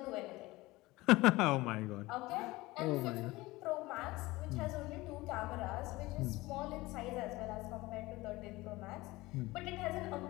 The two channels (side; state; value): right; quieter; 20.2 dB